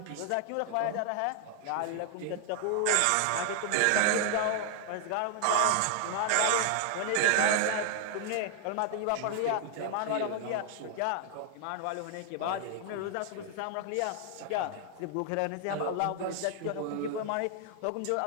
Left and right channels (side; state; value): both; different; correlation 0.00